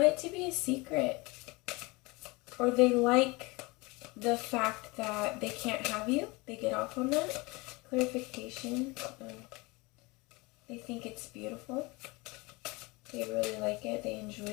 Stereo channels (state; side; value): quieter; right; 24.8 dB